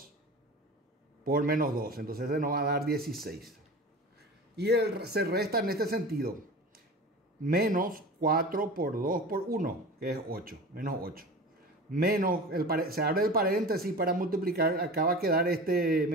por menos 2. Entonces se nos va a dar 16. Y se resta en este sentido. Menos 4 por 2 por 1, que es 8. Menos 8. Menos, se abre el paréntesis para multiplicar. Acá va a quedar este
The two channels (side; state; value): both; normal; correlation 0.35